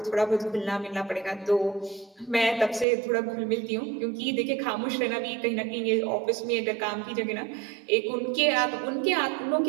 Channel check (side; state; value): left; drops out; at 2.9 s